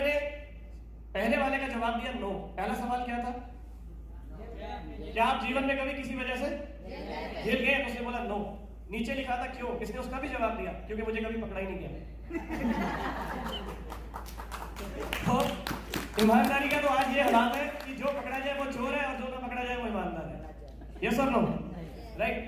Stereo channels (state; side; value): identical; both; correlation 1.00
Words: ने पहले वाले का जवाब दिया नो। पहला सवाल क्या था, क्या आप जीवन में कभी किसी वजह से हिल गए, तो उसने बोला नो। नीचे लिखा था क्यों, इसने उसका भी जवाब दिया क्योंकि मुझे कभी पकड़ा ही नहीं गया। तो ईमानदारी का तो आज ये हालात है कि जो पकड़ा जाए वो चोर है और जो ना पकड़ा जाए वो ईमानदार है। यस और नो, राइट।